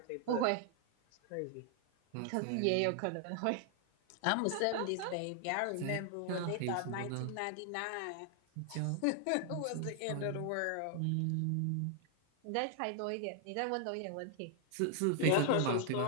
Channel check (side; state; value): both; different; correlation 0.00